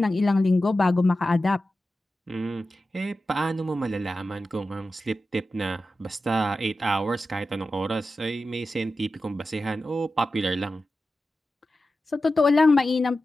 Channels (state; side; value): normal; both; correlation 0.93